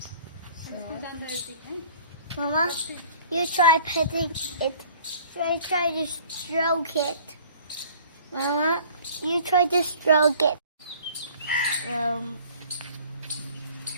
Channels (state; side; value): inverted; both; correlation -0.51